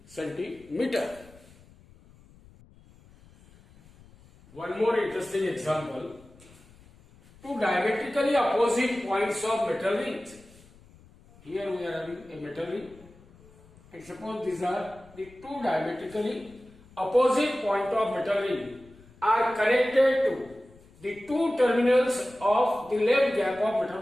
centimeter. One more interesting example. Two diametrically opposite points of metal rings. Here we are having a metal ring. And suppose these are the two diametrically opposite point of metal ring are connected to the two terminals of the left gap of metal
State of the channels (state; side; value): noise; left; rumble, 25 dB below the sound